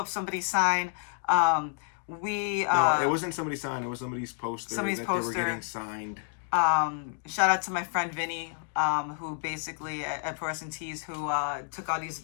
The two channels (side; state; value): right; silent; 58 dB below the other